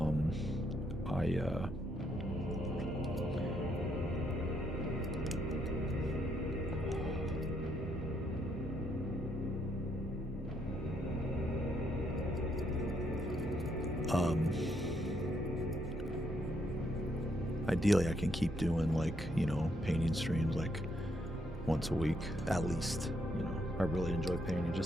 Ideally, I can keep doing, like, you know, painting streams, like, once a week, at least. You know, I really enjoy painting.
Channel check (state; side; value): noise; right; hum, 15 dB below the sound